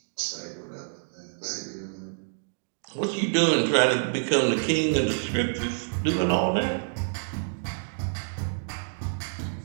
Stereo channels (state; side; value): silent; left; digital silence